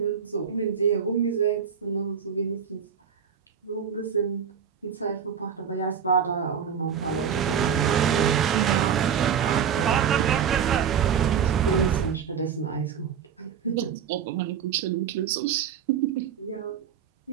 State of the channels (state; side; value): quieter; left; 7.7 dB